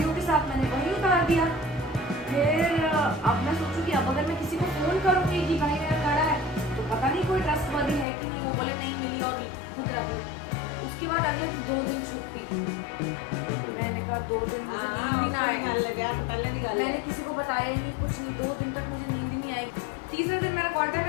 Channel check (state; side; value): drops out; right; at 8.1 s